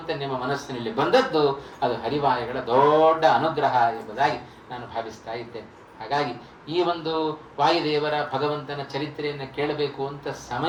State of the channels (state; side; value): identical; both; correlation 1.00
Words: ನಿಮ್ಮ ಮನಸ್ಸಿನಲ್ಲಿ ಬಂದದ್ದು ಅದು ಹರಿವಾಯುಗಳ ದೊಡ್ಡ ಅನುಗ್ರಹ ಎಂಬುದಾಗಿ ನಾನು ಭಾವಿಸ್ತಾ ಇದ್ದೇನೆ. ಹಾಗಾಗಿ ಈ ಒಂದು ವಾಯುದೇವರ ಭಗವಂತನ ಚರಿತ್ರೆಯನ್ನು ಕೇಳಬೇಕು ಅಂತ